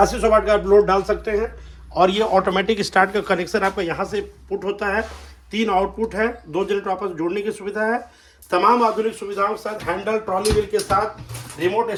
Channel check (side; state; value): both; identical; correlation 1.00